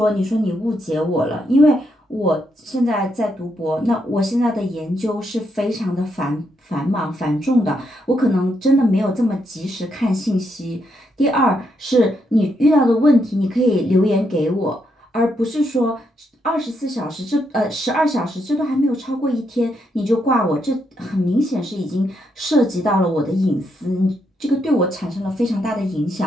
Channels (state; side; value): normal; both; correlation 0.79